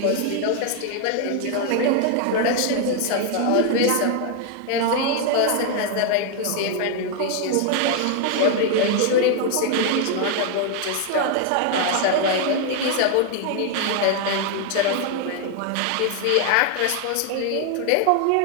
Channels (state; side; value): different; both; correlation 0.00